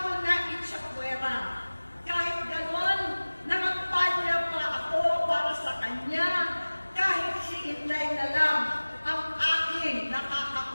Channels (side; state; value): both; inverted; correlation -1.00